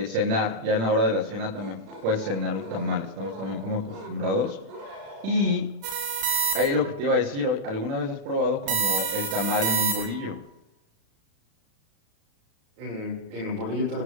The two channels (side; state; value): left; late; 36 ms